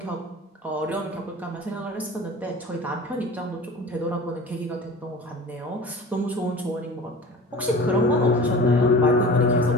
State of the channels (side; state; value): both; normal; correlation 0.38